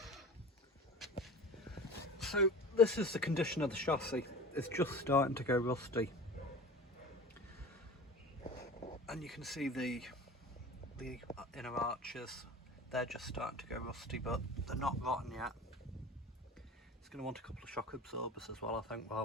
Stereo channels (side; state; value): both; normal; correlation 0.37